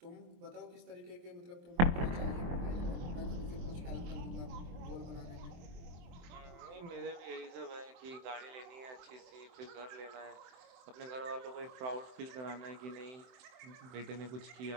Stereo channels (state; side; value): late; left; 23 ms